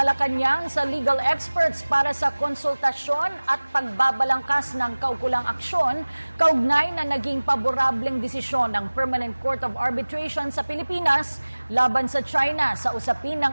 sa legal experts para sa konsultasyon at pagbabalangkas ng kaukulang aksyon kaugnay na naging paborableng desisyon ng Permanent Court of Arbitration sa Pilipinas laban sa China sa usapin ng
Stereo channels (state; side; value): inverted; both; correlation -1.00